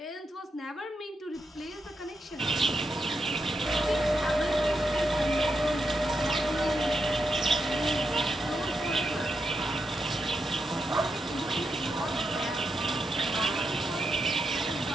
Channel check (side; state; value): both; normal; correlation 0.85